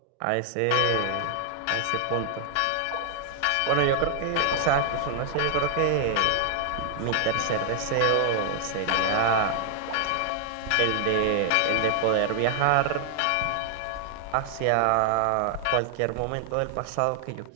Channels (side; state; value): both; different; correlation 0.00